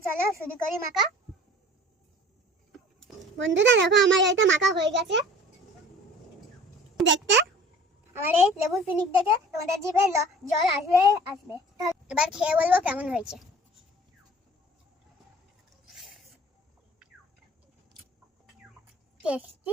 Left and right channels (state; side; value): normal; both; correlation 0.47